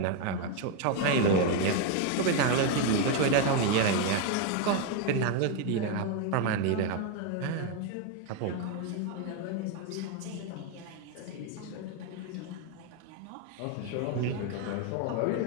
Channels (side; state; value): both; different; correlation 0.01